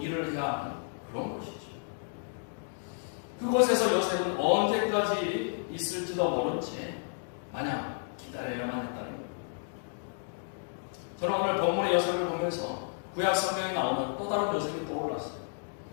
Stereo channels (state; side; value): silent; right; digital silence